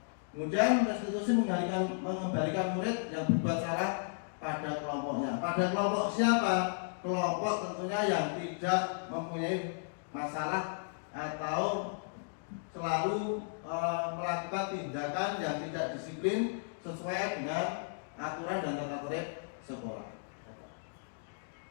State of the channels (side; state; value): right; silent; digital silence